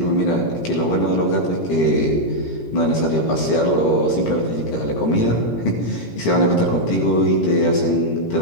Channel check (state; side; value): late; right; 17 ms